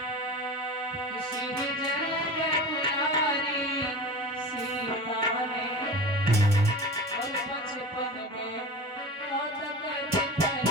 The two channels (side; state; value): both; normal; correlation 0.32